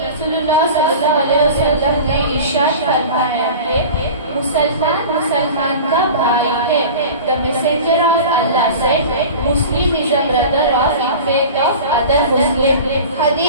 रसूलुल्लाह सल्लल्लाहु अलैहि वसल्लम ने इरशाद फरमाया है, मुसलमान मुसलमान का भाई है। The messenger of Allah said, Muslim is a brother of in faith of other Muslim.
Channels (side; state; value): both; inverted; correlation -0.36